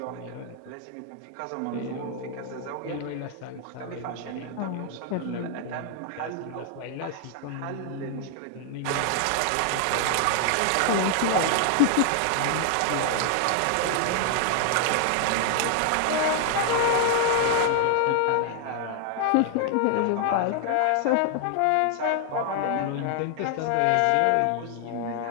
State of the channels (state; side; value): different; both; correlation 0.00